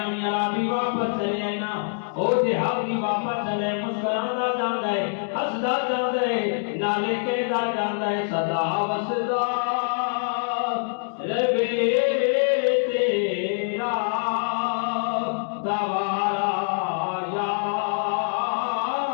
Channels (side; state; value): right; silent; digital silence